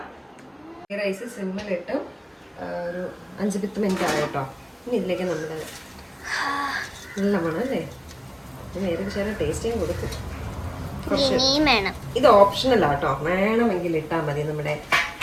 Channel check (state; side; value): identical; both; correlation 1.00